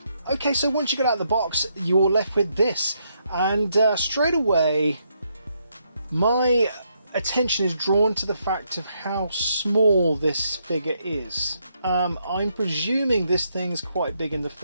Okay, so once you get out of the box, you're left with this, and straight away my attention is drawn to the fact of how small this figure is. I'm presuming this thing's quite big in the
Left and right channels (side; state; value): both; inverted; correlation -0.76